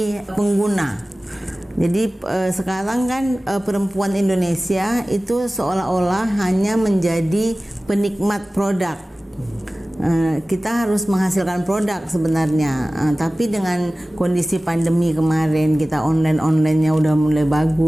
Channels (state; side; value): normal; both; correlation 0.97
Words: pengguna. Jadi sekarang kan perempuan Indonesia itu seolah-olah hanya menjadi penikmat produk. Kita harus menghasilkan produk sebenarnya, tapi dengan kondisi pandemi kemarin kita online-nya udah mulai